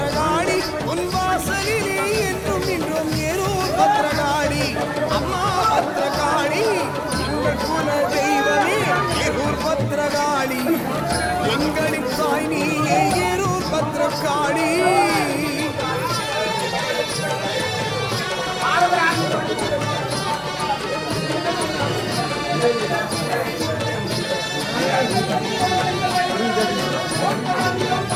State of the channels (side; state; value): both; identical; correlation 1.00